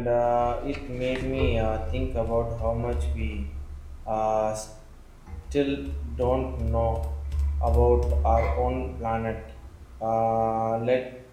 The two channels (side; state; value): both; identical; correlation 1.00